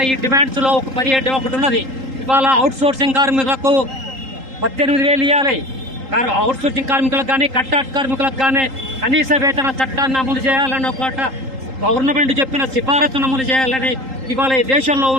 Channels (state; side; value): late; left; 3.8 ms